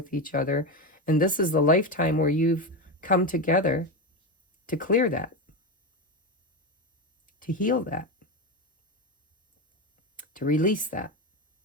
each other. And this is the lifetime where you've come together to clear that, to heal that, to release that,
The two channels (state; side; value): normal; both; correlation 0.15